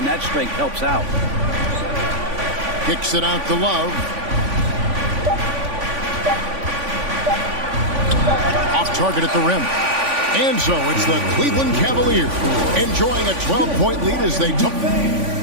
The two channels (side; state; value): left; late; 3.5 ms